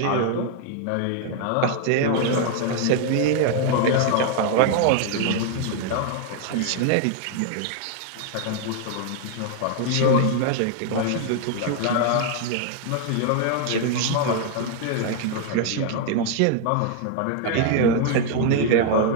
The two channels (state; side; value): different; both; correlation 0.00